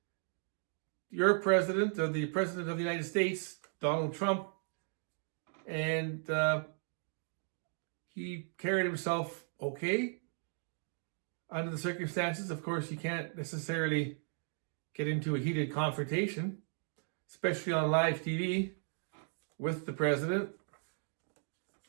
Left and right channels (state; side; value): silent; left; 54 dB below the other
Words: your president, or the president of the United States, Donald Trump, and he carried himself okay under the circumstances. Of course, you can't necessarily get into a heated confrontation, especially on live TV with the president.